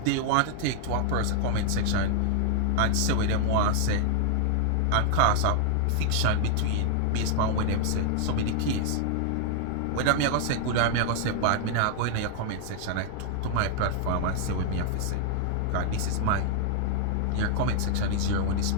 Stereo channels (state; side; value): different; both; correlation 0.00